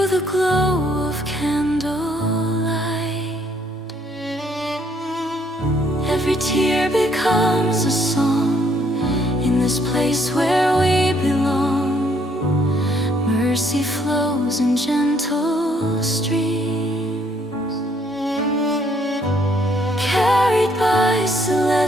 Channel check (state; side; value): normal; both; correlation 0.67